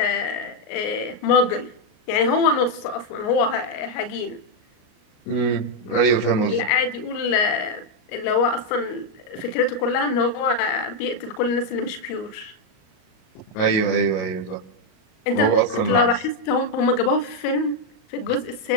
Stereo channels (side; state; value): right; late; 38 ms